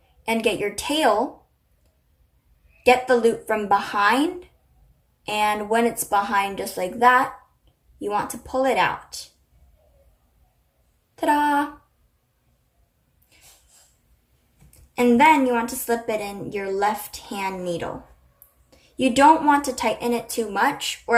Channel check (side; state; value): both; identical; correlation 1.00